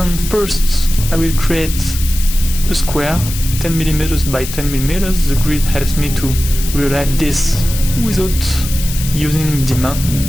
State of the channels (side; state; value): left; noise; hiss, 9 dB below the sound